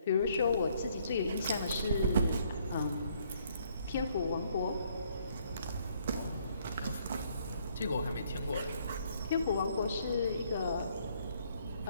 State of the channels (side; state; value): both; inverted; correlation -0.67